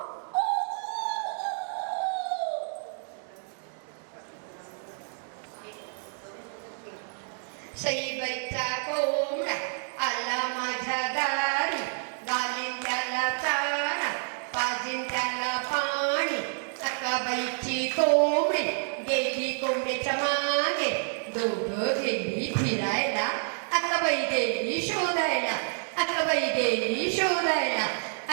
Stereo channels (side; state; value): left; silent; 59 dB below the other